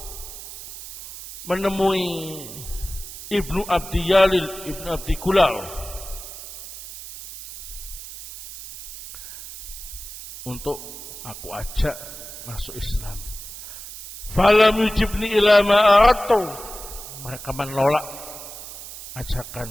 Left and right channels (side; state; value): right; noise; hiss, 12 dB below the sound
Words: menemui ibnu abdi Yalid ibnu abdi Gulal untuk aku ajak masuk Islam. Falam yujibni ila ma aradtu. Mereka menolak